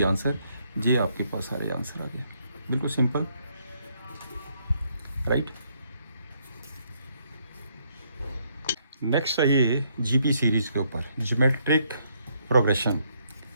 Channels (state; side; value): inverted; both; correlation -0.72